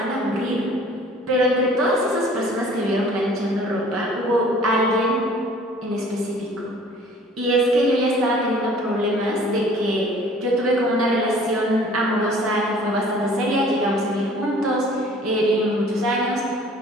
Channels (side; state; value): both; normal; correlation 0.51